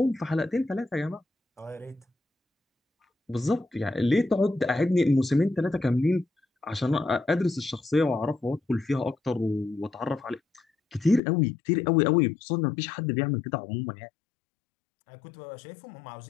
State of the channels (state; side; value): drops out; right; at 11.2 s